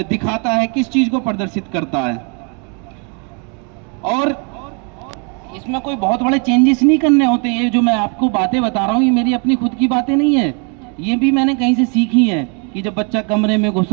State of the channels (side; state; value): left; quieter; 36.5 dB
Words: दिखाता है, किस चीज को प्रदर्शित करता है। और इसमें कोई बहुत बड़े चेंजेस नहीं करने होते। ये जो मैं आपको बातें बता रहा हूँ ये मेरी अपनी खुद की बातें नहीं है, ये भी मैंने कहीं से सीखी है। कि जब बच्चा कमरे में